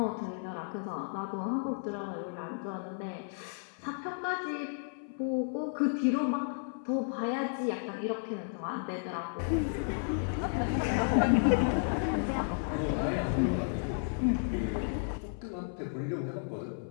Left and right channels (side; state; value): right; silent; 56 dB below the other